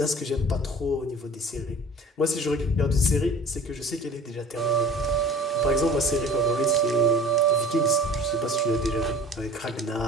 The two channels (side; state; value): both; normal; correlation 0.43